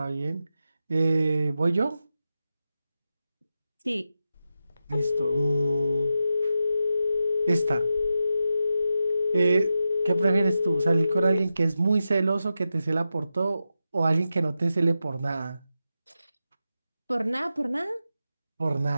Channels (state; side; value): inverted; both; correlation -0.90